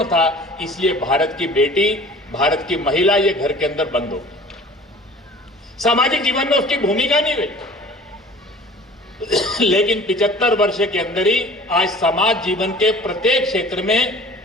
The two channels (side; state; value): both; normal; correlation 0.45